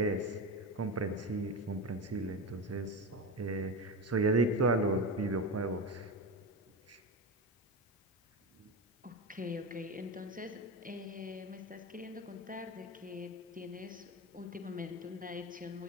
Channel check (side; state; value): both; normal; correlation 0.21